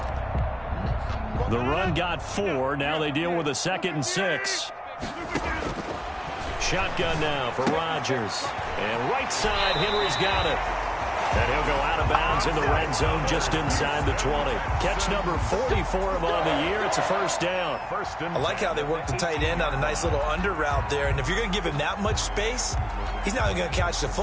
The run got 4. Now they deal with a 2nd and 6. Shotgun now for Rodgers. And right side, Henry's got it. And he'll go out of bounds in the red zone just inside the 20. Catch number 40 for him on the year. It's a first down. I like how they work the tight end on a nice little under route there. And if you're going to give him that much space, he's not going to catch the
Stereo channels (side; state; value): both; identical; correlation 1.00